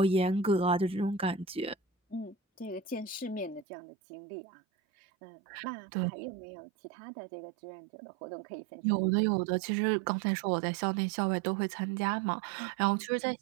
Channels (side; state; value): left; drops out; at 3.7 s